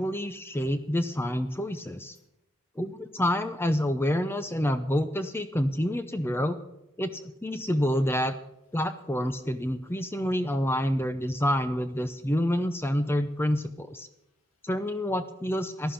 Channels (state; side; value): normal; both; correlation 0.85